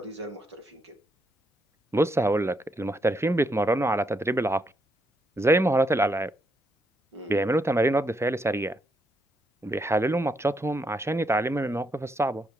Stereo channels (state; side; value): normal; both; correlation 0.77